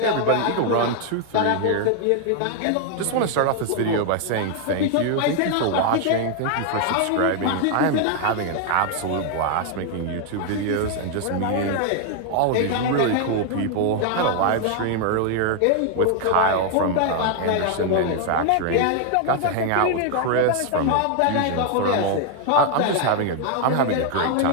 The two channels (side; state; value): both; different; correlation 0.00